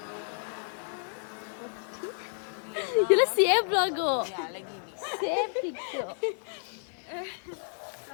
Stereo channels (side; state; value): right; silent; 57 dB below the other